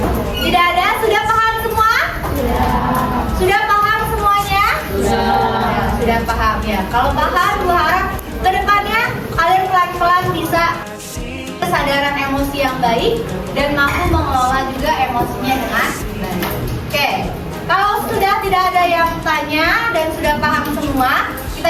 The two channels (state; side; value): identical; both; correlation 1.00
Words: Tidak ada? Sudah paham semua? Sudah paham semuanya? Sudah paham ya. Kalau paham, gue harap kedepannya kalian pelan-pelan bisa kesadaran emosi yang baik dan mampu mengelola juga emosinya dengan baik. Oke, kalau sudah tidak ada yang tanya dan sudah paham semua,